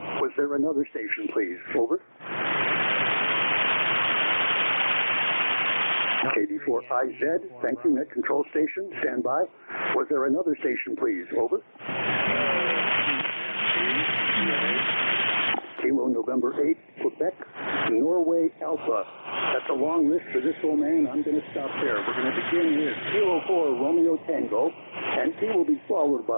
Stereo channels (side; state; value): both; inverted; correlation -1.00